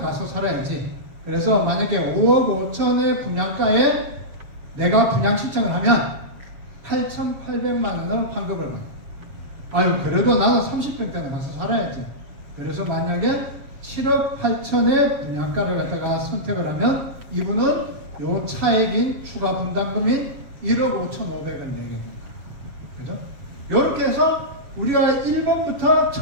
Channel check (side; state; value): left; late; 7.4 ms